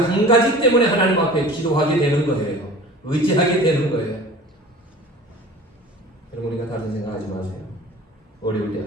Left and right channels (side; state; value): both; normal; correlation 0.41